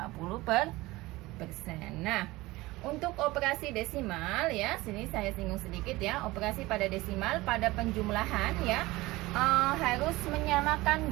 per persen. Nah, Untuk operasi desimal ya, sini saya singgung sedikit ya. Operasi pada desimal pada penjumlahan ya, harus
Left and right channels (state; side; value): quieter; left; 20.0 dB